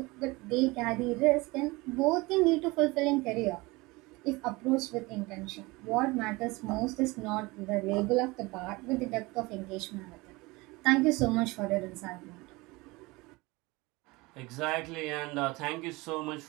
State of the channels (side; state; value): left; quieter; 23.1 dB